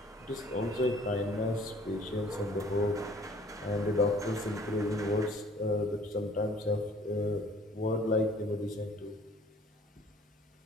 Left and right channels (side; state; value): both; normal; correlation 0.55